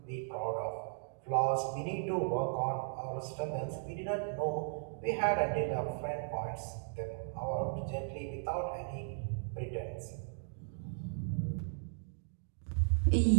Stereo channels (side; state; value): left; silent; digital silence